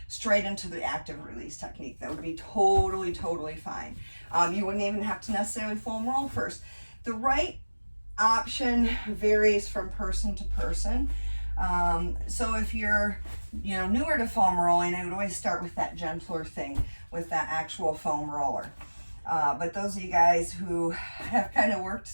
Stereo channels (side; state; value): both; inverted; correlation -1.00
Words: straight into the active release technique. That would be totally, totally fine. You wouldn't even have to necessarily foam roll first. The right option varies from person to person. So if you're, you know, newer to foam rolling, I would always start with that gentler thing, with that actual foam roller. But those of you guys who have kind of worked